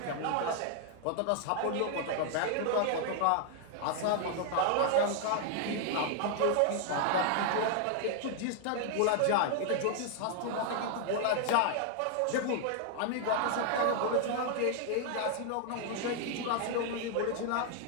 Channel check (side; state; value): both; different; correlation 0.00